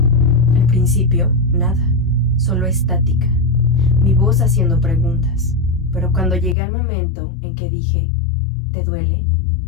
Al principio, nada, solo estática, mi voz haciendo preguntas. Pero cuando llegué al momento en que dije, ¿te duele?,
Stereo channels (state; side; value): drops out; right; at 6.6 s